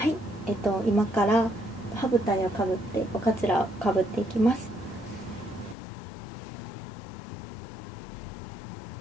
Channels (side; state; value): right; drops out; at 5.8 s